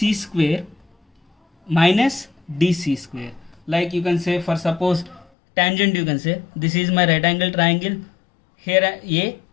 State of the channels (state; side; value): drops out; right; at 5.2 s